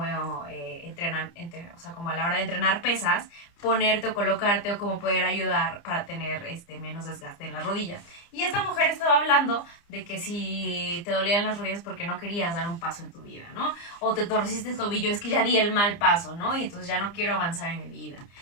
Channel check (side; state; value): right; late; 29 ms